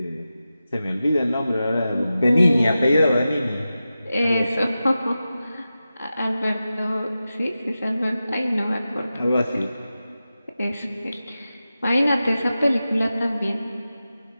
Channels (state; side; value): inverted; both; correlation -0.93